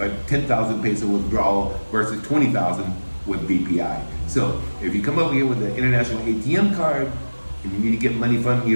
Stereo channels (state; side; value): inverted; both; correlation -1.00